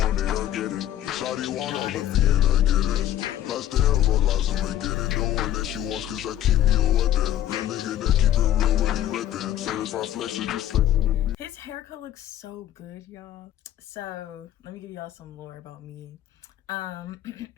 it, I get it. Shawty want all of me and I get it. Lots to hell, but lots of me get it. The one that she wants cause I keep me a weapon. Real nigga that keep it real when he reppin'. Certified flex is just flexing. His haircut looks so good, y'all. So let me give y'all some lore about me.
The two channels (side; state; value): right; quieter; 12.0 dB